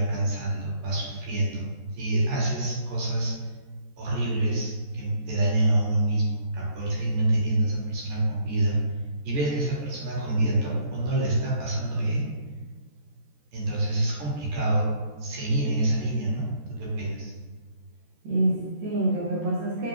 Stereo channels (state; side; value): late; left; 14 ms